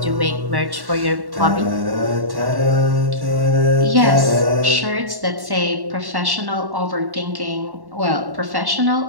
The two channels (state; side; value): late; left; 1.1 ms